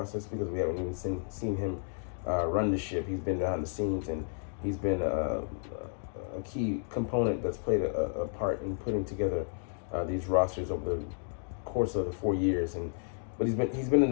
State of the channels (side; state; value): right; silent; digital silence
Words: because we haven't even seen him run the ship. He's been behind the scenes, and he's been a key component that's played a part in putting together these rosters over the course of the 4 years. But he's been in